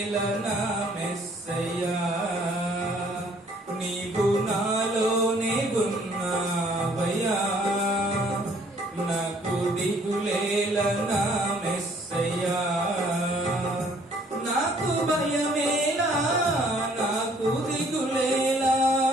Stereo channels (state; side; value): normal; both; correlation 0.61